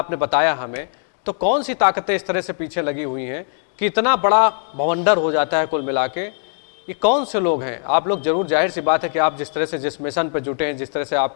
बताया हमें, तो कौन सी ताकतें इस तरह से पीछे लगी हुई हैं कि इतना बड़ा भवंडर हो जाता है कुल मिला के? ये कौन से लोग हैं? आप लोग जरूर, जाहिर सी बात है कि आप जिस तरह से जिस मिशन पे जुटे हैं, जिस तरह से आप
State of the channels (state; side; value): silent; right; digital silence